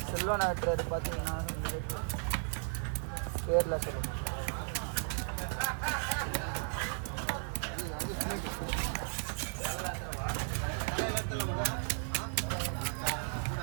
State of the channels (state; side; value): silent; left; 54 dB below the other